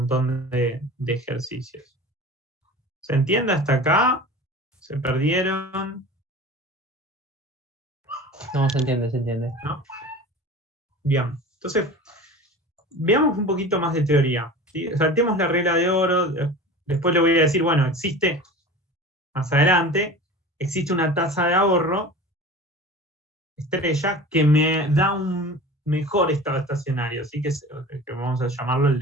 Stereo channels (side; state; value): both; normal; correlation 0.36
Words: de ejercicios. ¿Se entiende hasta acá? ¿Se perdieron? No, se entiende. ¿No? Bien, entonces, veamos un poquito más de teoría, ¿sí? Saltemos la regla de oro, después le voy a decir, bueno, existe, más adelante, existe una tasa de ahorro estrella que me da un mejor estado estacionario, ¿sí? que vamos a llamarlo el